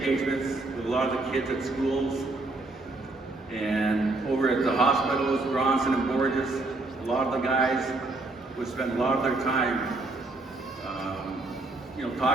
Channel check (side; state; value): left; quieter; 3.1 dB